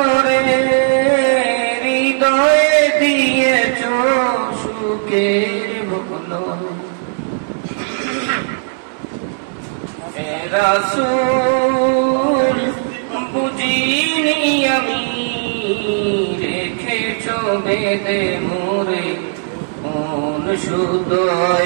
হৃদয়ে দিয়েছো সুখের বলো। হে রাসূল বুঝিনি আমি রেখেছো বেদে মোরে কোন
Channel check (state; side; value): silent; left; digital silence